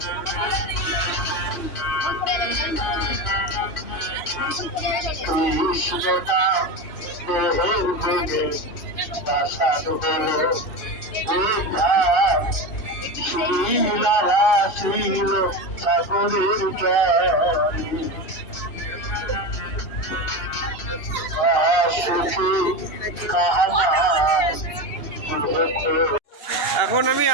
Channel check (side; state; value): right; late; 2.8 ms